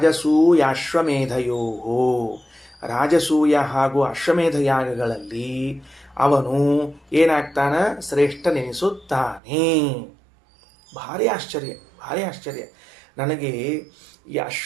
ರಾಜಸೂಯ ಹಾಗೂ ಅಶ್ವಮೇಧ ಯಾಗಗಳಲ್ಲಿ ಅವನು ಏನಾಗ್ತಾನ? ಶ್ರೇಷ್ಠನೆನಿಸುತ್ತಾನೆ. ಭಾರಿ ಆಶ್ಚರ್ಯ, ಭಾರಿ ಆಶ್ಚರ್ಯ. ನನಗೆ ಈ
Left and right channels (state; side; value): drops out; left; at 9.4 s